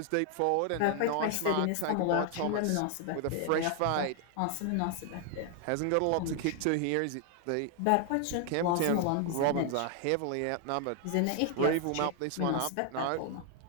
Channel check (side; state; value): both; different; correlation 0.00